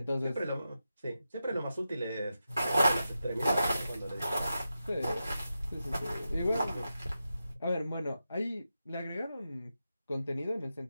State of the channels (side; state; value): both; inverted; correlation -0.90